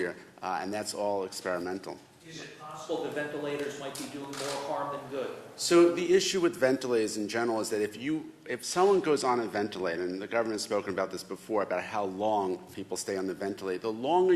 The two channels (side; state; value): both; identical; correlation 1.00